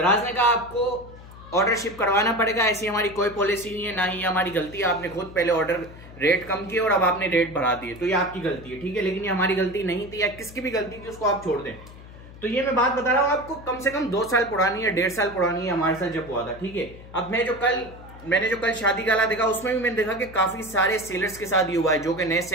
ने कहा आपको ऑर्डर शिप करवाना पड़ेगा, ऐसी हमारी कोई पॉलिसी नहीं है, ना ही हमारी गलती है। आपने खुद पहले ऑर्डर रेट कम किए और अब आपने रेट बढ़ा दिए, तो ये आपकी गलती है, ठीक है। लेकिन ये हमारी गलती नहीं थी, या किसकी भी गलती थी, उसको आप छोड़ दें। तो ये मैं बात बता रहा हूँ आपको, कम से कम 2 साल पुरानी या 1.5 साल पुरानी है हमारे साथ जब हुआ था, ठीक है। अब मैंने जो कल शादी गाला देखा उसमें भी मैंने देखा कि काफी सारे सेलर्स के साथ ये हुआ है। जो कि नए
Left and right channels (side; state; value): left; noise; hum, 18 dB below the sound